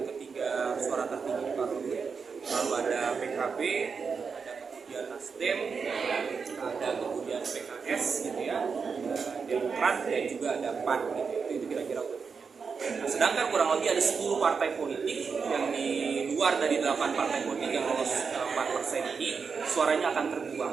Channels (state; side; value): quieter; left; 5.5 dB